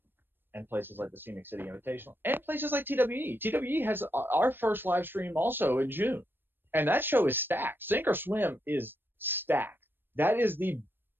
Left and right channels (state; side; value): late; left; 0.098 ms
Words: and places like the Scenic City Invitational and places like TWE. TWE has our first live stream also in June. And that show is stacked. Sink or Swim is stacked. That is